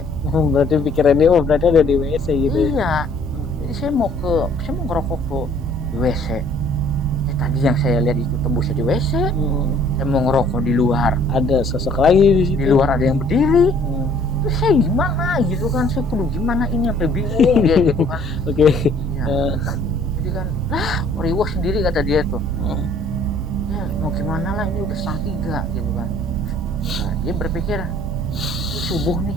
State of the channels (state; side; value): normal; both; correlation 0.57